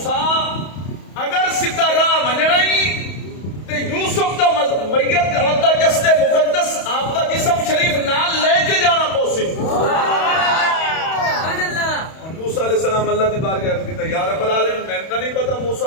اگر سیدھا راہ مننا ہی تے یوسف دا میت آپ دا جسد مقدس آپ دا جسم شریف نال لے کے جانا پوسی. موسیٰ علیہ السلام اللہ دی بارگاہ عرض کیتا یا رب العالمین میں تو نہیں پتا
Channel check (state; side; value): late; right; 31 ms